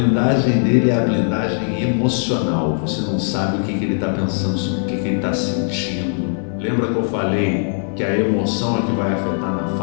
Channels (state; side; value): silent; right; 56 dB below the other